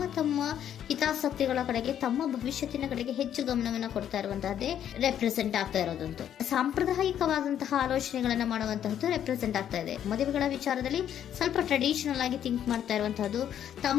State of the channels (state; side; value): quieter; right; 10.0 dB